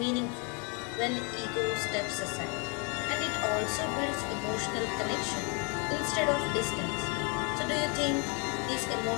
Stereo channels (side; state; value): right; quieter; 34.0 dB